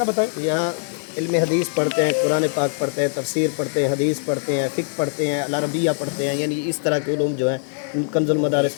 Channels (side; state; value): right; silent; 64 dB below the other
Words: बताएं। यहाँ इल्म हदीस पढ़ते हैं, कुरान पाक पढ़ते हैं, तफसीर पढ़ते हैं, हदीस पढ़ते हैं, फ़िक़्ह पढ़ते हैं, अल अरबिया पढ़ते हैं, यानी इस तरह के उलूम जो है कंजुल